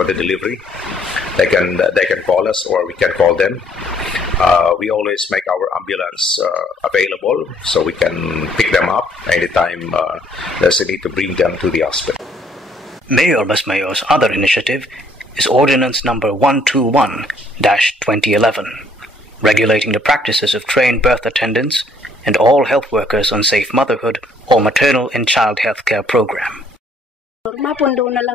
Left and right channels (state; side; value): normal; both; correlation 0.64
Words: the delivery. they can call us or we can call them. We always make our ambulance available so we can pick them up anytime there's a need to bring them to the hospital. Mayor Basmayor's other initiative is Ordinance Number 121-2011, regulating the practices of trained birth attendants and all health workers on safe motherhood or maternal and child health care program. Mapundo na